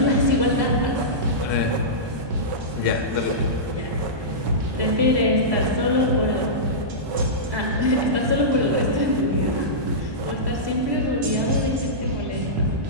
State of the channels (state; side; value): late; left; 1.2 ms